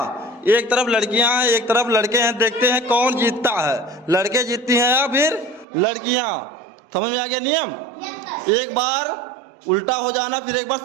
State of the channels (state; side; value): drops out; left; at 5.7 s